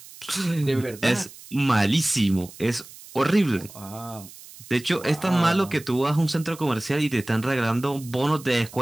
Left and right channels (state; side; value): noise; right; hiss, 19 dB below the sound